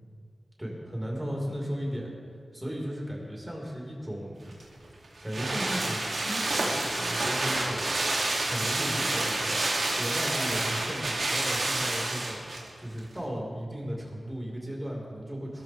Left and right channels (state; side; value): normal; both; correlation 0.95